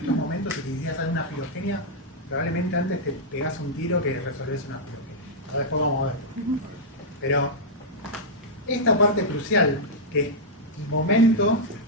momentos y quisieras hacer una filogenia, probablemente antes te pegás un tiro que resolvés una filogenia. Ahora después vamos a ver. Pero esta parte crucial, que es el momento,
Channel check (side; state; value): both; normal; correlation -0.06